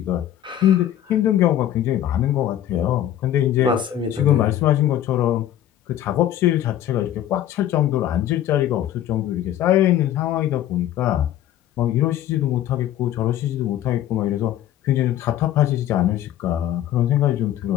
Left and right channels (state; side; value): quieter; right; 11.7 dB